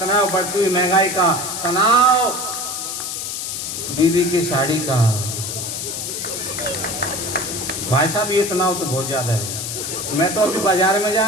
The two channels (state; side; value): noise; left; hiss, 4 dB below the sound